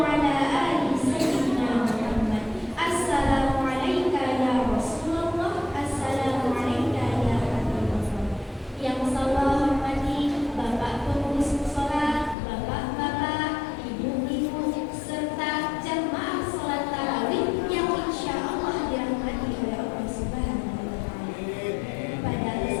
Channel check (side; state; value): right; drops out; at 12.4 s